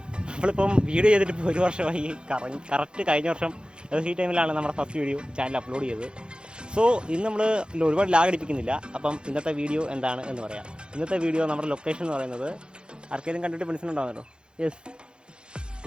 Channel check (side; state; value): left; late; 0.051 ms